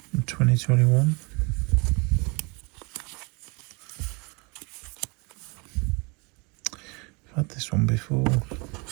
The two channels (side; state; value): left; quieter; 30.0 dB